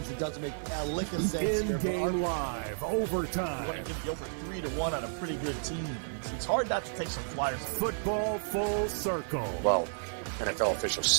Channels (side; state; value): left; silent; 56 dB below the other